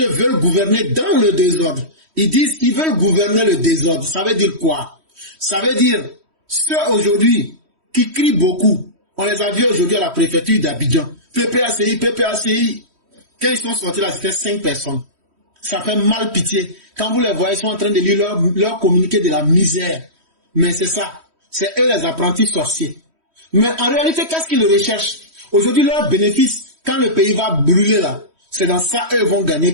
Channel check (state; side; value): late; left; 3.1 ms